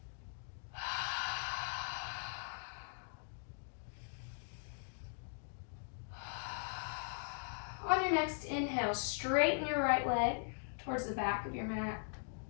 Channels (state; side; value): silent; right; digital silence